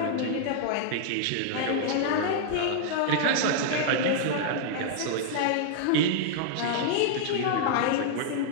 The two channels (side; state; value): both; different; correlation -0.01